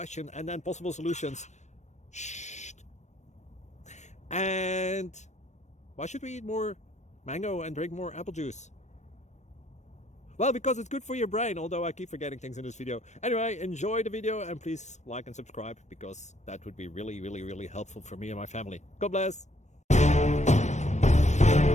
and then possible solutions. Shh. And why should we eat more mango and drink more apple juice? Well, because it's good for your brain, although I keep forgetting things in this video. Anyway, enjoy the video and please like and subscribe, because that would be really helpful for me and my family. God bless.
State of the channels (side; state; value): right; late; 0.34 ms